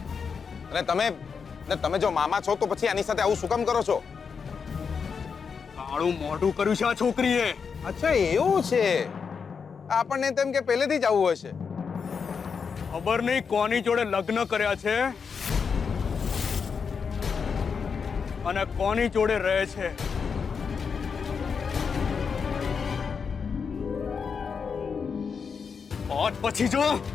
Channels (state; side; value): quieter; right; 6.0 dB